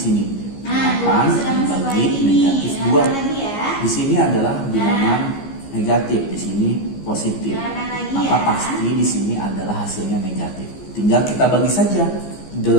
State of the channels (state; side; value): late; right; 15 ms